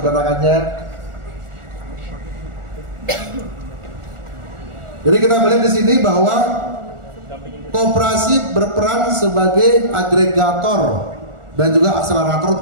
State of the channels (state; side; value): late; left; 1.4 ms